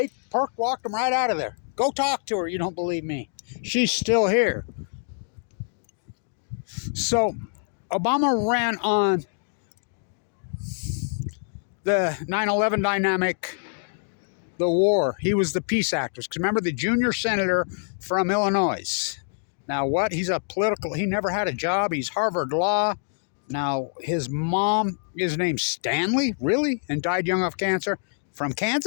walked them right out of there. Go talk to her. You don't believe me. She's still here. So Obama ran on the 9/11 dynamic, the war. He was the peace activist. Because remember, the junior senator from Illinois. Now what? He never had a job. He's Harvard Law. Now his mom is named Stanley, really? And died young of cancer. From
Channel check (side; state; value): right; silent; digital silence